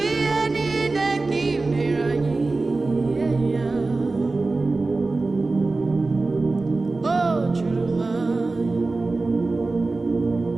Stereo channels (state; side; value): quieter; left; 3.5 dB